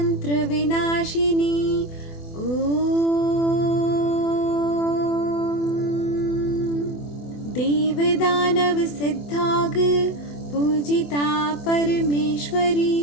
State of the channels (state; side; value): late; right; 24 ms